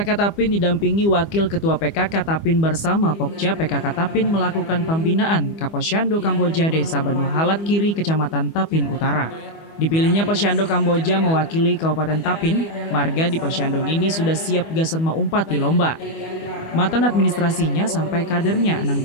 Tapin didampingi Wakil Ketua PKK Tapin bersama Pokja PKK Tapin melakukan pembinaan ke Posyandu Kamboja Desa Banua Halat Kiri Kecamatan Tapin Utara. Dipilihnya Posyandu Kamboja mewakili Kabupaten Tapin, marga di Posyandu ini sudah siap gasan mengumpat di lomba. Matan administrasinya sampai kadernya nang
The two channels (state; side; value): late; right; 25 ms